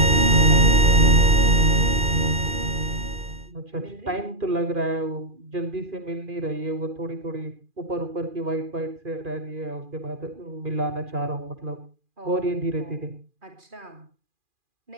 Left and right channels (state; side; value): late; left; 2.4 ms